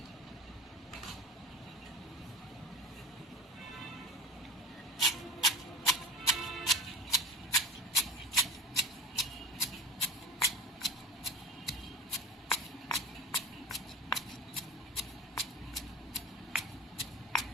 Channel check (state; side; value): normal; both; correlation 0.33